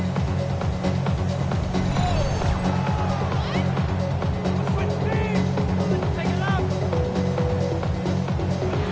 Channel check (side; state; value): both; identical; correlation 1.00